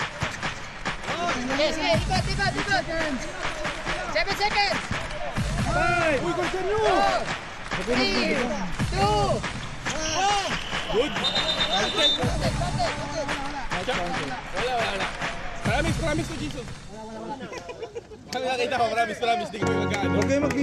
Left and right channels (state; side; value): identical; both; correlation 1.00